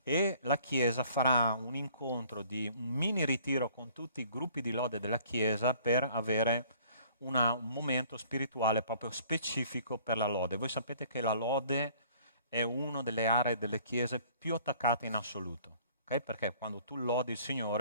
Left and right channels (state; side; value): inverted; both; correlation -0.56